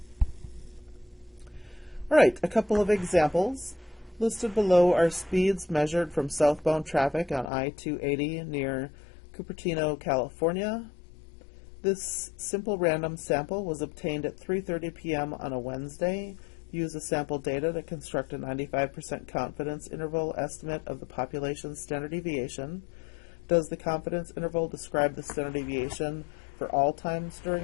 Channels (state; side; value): drops out; right; at 7.5 s